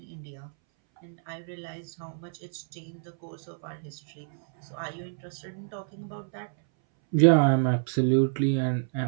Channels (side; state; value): left; silent; 59 dB below the other